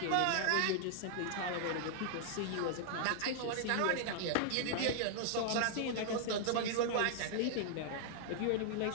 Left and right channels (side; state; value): both; different; correlation -0.01